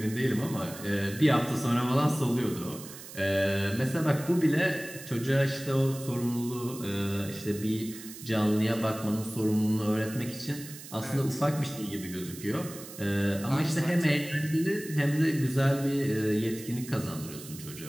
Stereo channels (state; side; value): noise; right; hiss, 14 dB below the sound